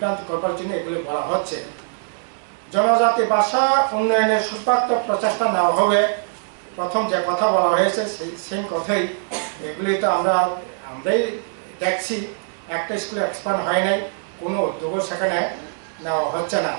করবার জন্য এগুলো বলা হচ্ছে। জনজাতি ভাষা উন্নয়নের সুস্বার্থক প্রচেষ্টা নেওয়া হবে, প্রথম যে কথা বলা হয়েছে সেই কথাই। এগুলি তো আমরাই দেখছি, একটা স্কুলে এক্সপ্যান্ড হয় নাই, কোনো উদ্যোগও সেখানে নেওয়া হচ্ছে না।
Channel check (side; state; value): left; silent; digital silence